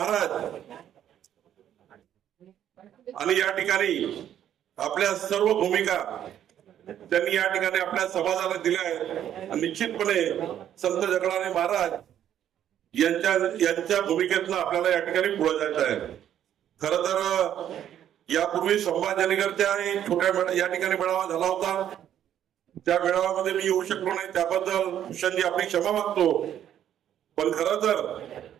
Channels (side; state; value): left; quieter; 10.5 dB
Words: आणि या ठिकाणी आपल्या सर्व भूमिका त्यांनी या ठिकाणी आपल्या समाजाला दिल्या आहेत. निश्चितपणे संत जगनाडे महाराज यांच्या भूमिकेतनं आपल्याला या ठिकाणी पुढे जायचं आहे. खर तर यापूर्वी संभाजीनगरच्या छोट्या या ठिकाणी मेळावा झाला होता, त्या मेळाव्यामध्ये मी येऊ शकलो नाही, त्याबद्दल भूषणजी आपली क्षमा मागतो. पण खरं तर